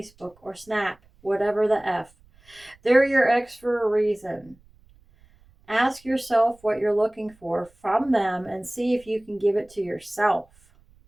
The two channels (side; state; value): right; noise; rumble, 29 dB below the sound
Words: or Snap, whatever the F. They're your ex for a reason. Ask yourself what you're looking for from them and see if you can give it to yourself.